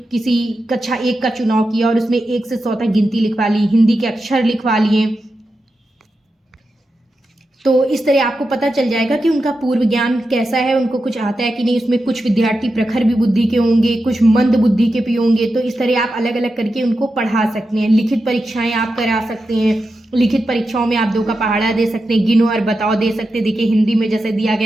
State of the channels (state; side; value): normal; both; correlation 0.89